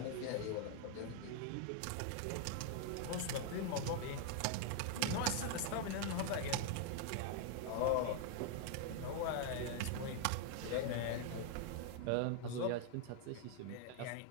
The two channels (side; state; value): both; different; correlation 0.00